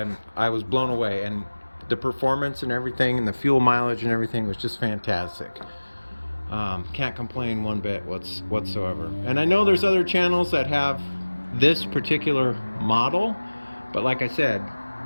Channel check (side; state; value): both; inverted; correlation -1.00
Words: blown away, and the performance and everything, and the fuel mileage and everything was just fantastic. Can't complain one bit whatsoever. And I know there's other channels that have this particular model, but like I said,